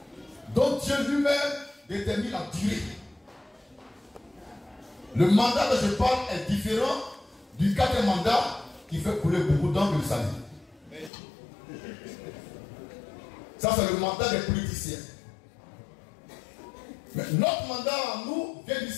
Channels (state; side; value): drops out; right; at 11.1 s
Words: dont Dieu lui-même détermine la durée. Le mandat dont je parle est différent du quatrième mandat qui fait couler beaucoup d'encre le salut. Ça, c'est le mandat des politiciens. Mais notre mandat en nous vient du